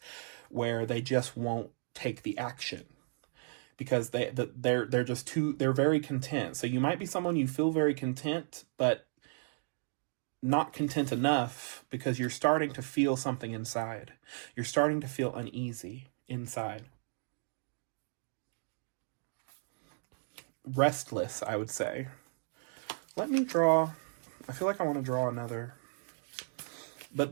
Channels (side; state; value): left; silent; digital silence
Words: where they just won't take the action because they're just they're very content. So you might be someone you feel very content, but not content enough because you're starting to feel something inside. You're starting to feel uneasy inside. Restless, I would say. Let me draw. I feel like I want to draw another.